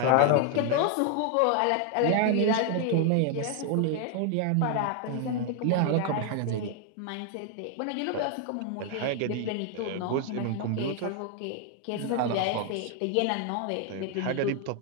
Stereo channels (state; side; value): different; both; correlation 0.00